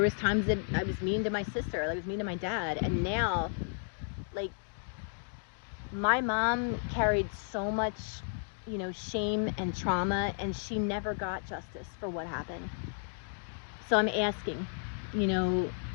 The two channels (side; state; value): right; silent; digital silence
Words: was times that I was mean to my sister. I was mean to my dad. And now, like, my mom carried so much, you know, shame and trauma, and she never got justice for what happened. So I'm asking, you know,